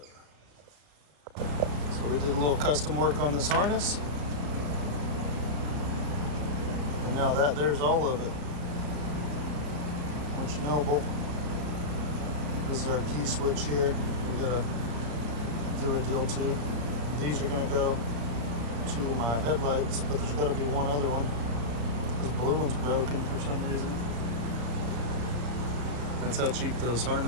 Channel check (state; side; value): late; left; 34 ms